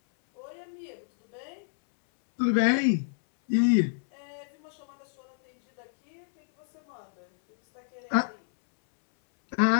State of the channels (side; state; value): right; silent; 59 dB below the other